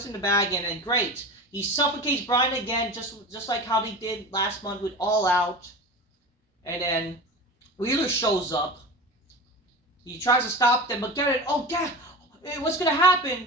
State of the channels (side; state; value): both; normal; correlation 0.31